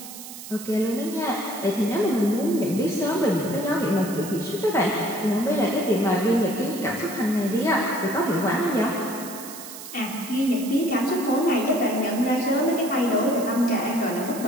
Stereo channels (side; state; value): right; noise; hiss, 13 dB below the sound